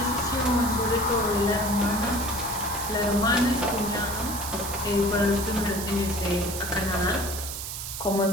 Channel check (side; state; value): right; noise; hiss, 6 dB below the sound